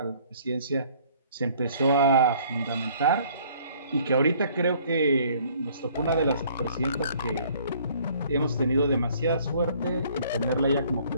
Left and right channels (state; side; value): inverted; both; correlation -0.58